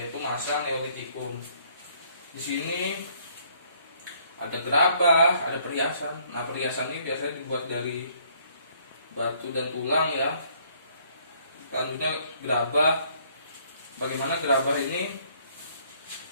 masa Neolitikum. Di sini ada gerabah, ada perhiasan. Nah, perhiasan ini biasanya dibuat dari batu dan tulang ya. Selanjutnya gerabah. Bagaimana gerabah ini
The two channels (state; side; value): inverted; both; correlation -0.63